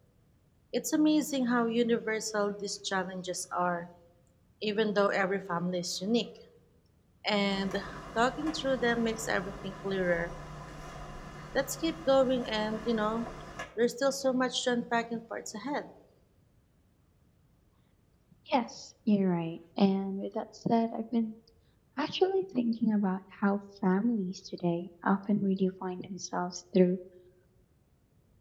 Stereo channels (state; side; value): identical; both; correlation 1.00